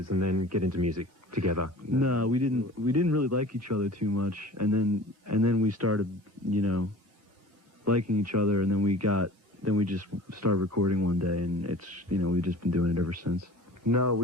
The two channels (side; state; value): both; normal; correlation 0.43